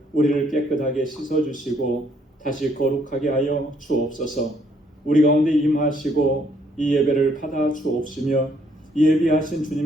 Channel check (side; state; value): both; normal; correlation 0.68